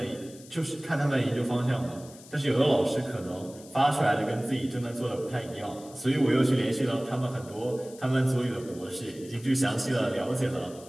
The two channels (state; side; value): noise; left; hiss, 20 dB below the sound